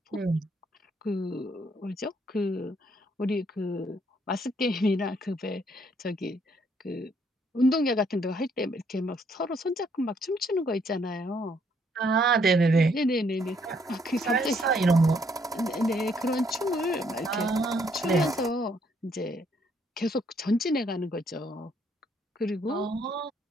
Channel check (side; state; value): both; normal; correlation 0.69